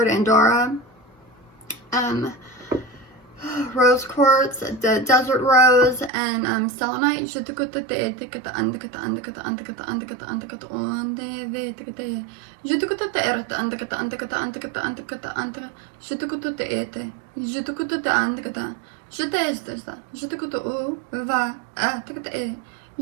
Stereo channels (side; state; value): left; drops out; at 6.1 s